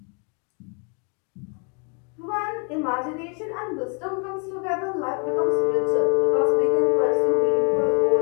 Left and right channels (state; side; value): quieter; right; 36.6 dB